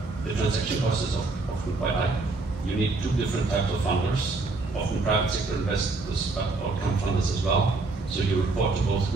The transaction cost is often quite high. You need two different types of funders, often private sector investors, but outcome funders as well. So you report to both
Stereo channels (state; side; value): quieter; left; 3.5 dB